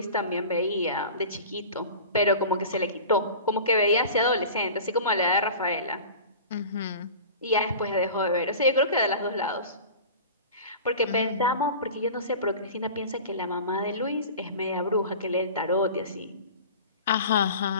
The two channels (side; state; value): both; inverted; correlation -0.37